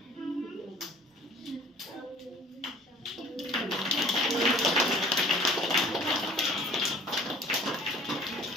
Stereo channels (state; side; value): normal; both; correlation 0.50